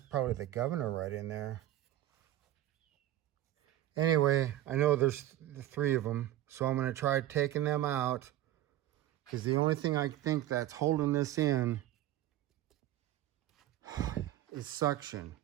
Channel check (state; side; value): quieter; left; 13.9 dB